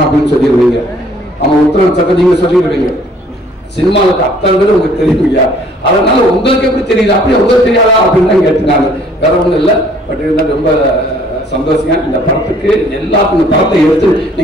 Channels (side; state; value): both; normal; correlation 0.58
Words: அப்படின்னு சொல்லிடுவீங்க. அவன் உத்தர நட்சத்திரம் நீங்க சொல்லிடுவீங்க. சினிமாவுக்கு அத்தனை உங்களுக்கு தெரியுங்க. அதனால உங்களுக்கு எப்படி தெரியுது, அப்படியே உங்களுக்கு தெரியாதா அப்படின்னு தான் கேட்டுனாங்க. வேற ஒண்ணும் இல்லை. பட் இருந்தால் ரொம்ப சந்தோஷம். இந்த படத்துக்கு எல்லாத்துக்கும் இந்த படத்தை எடுத்து